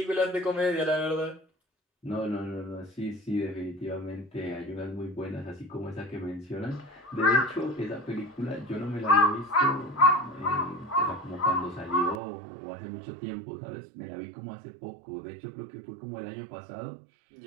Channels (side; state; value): left; drops out; at 12.2 s